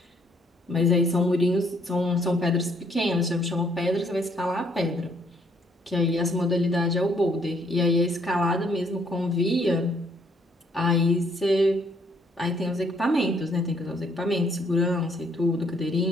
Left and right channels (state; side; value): normal; both; correlation 0.67